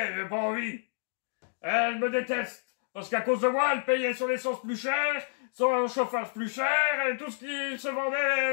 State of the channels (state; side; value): silent; right; digital silence